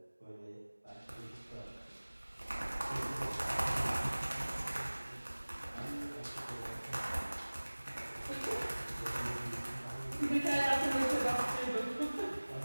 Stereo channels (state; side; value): inverted; both; correlation -1.00